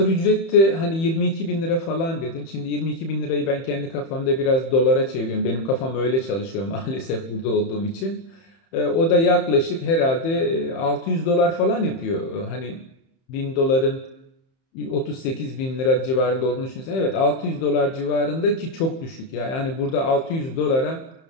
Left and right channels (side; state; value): right; late; 31 ms